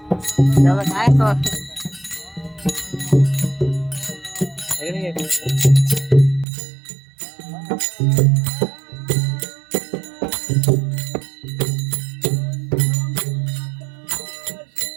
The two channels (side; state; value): left; drops out; at 6.5 s